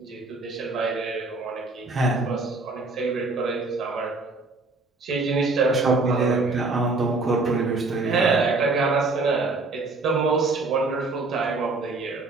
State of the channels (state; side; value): quieter; left; 3.5 dB